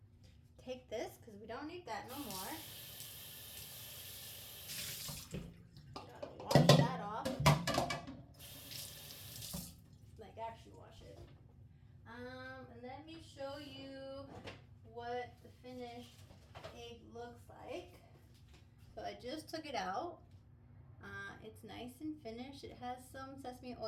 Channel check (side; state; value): both; identical; correlation 1.00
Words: Take this because we don't need that no more. Gotta wash that off. Like actually wash it. And let me show you what the finished egg looks like. So I just took it out. It's nice and finished. It has some sesame